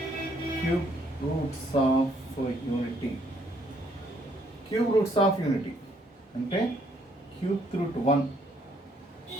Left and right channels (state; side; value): normal; both; correlation 0.67